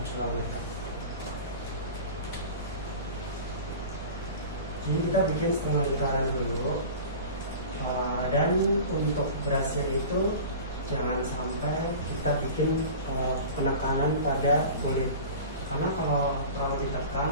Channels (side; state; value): both; inverted; correlation -0.36